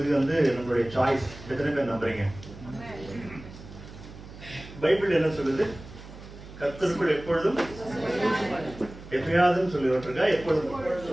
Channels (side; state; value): right; noise; hum, 16 dB below the sound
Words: நம்மளுடைய சாய்ஸ். எத்தனை பேர் நம்புறீங்க? பைபிள் என்ன சொல்லுது? கர்த்தருக்குள் எப்பொழுதும் எப்பயாவது சொல்லி விட்டுருக்கா. எப்பொழுதும்